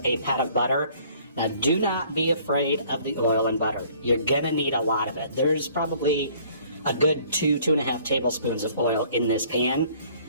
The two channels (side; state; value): both; inverted; correlation -0.58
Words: a pat of butter. Now do not be afraid of the oil and butter. You're going to need a lot of it. There's probably a good 2.5 tablespoons of oil in this pan.